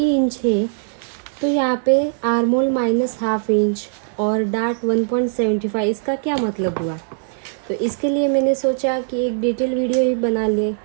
इंच है तो यहाँ पे आर्मोल -1/2 इंच और डार्ट 1.75, इसका क्या मतलब हुआ। तो इसके लिए मैंने सोचा कि एक डिटेल वीडियो ही बना ले,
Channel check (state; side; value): silent; left; 66 dB below the other